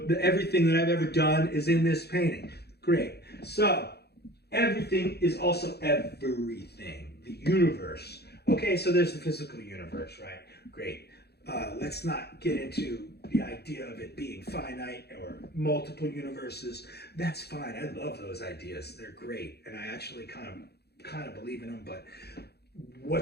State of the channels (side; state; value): right; late; 0.47 ms